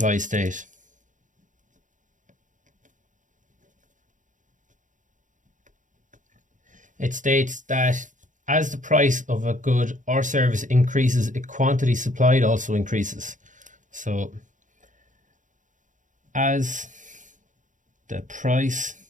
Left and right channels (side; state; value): left; late; 0.37 ms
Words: state? It states that as the price of a good or service increases, a quantity supplied also increases. So as the price